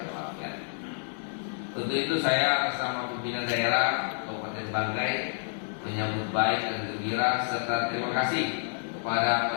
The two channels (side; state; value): right; silent; digital silence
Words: walafiat. Untuk itu saya atas nama pimpinan daerah Kabupaten Banggai menyambut baik dan gembira serta terima kasih kepada